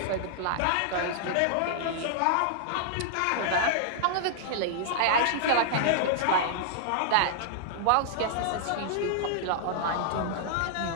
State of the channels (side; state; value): both; different; correlation -0.01